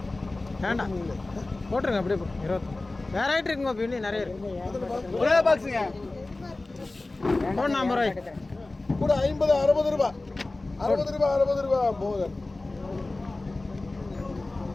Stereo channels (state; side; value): quieter; right; 3.1 dB